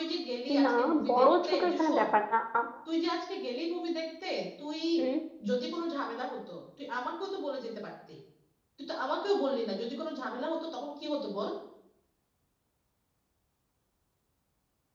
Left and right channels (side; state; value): both; identical; correlation 1.00